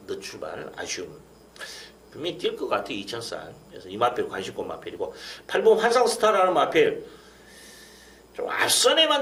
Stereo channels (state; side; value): identical; both; correlation 1.00